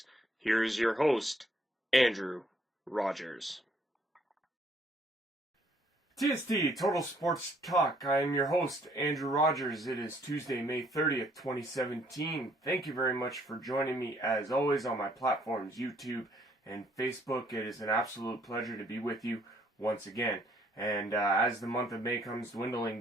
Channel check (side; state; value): both; normal; correlation 0.65